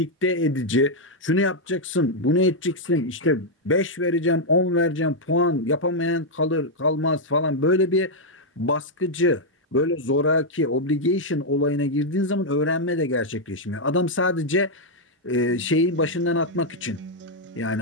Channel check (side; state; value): both; normal; correlation -0.02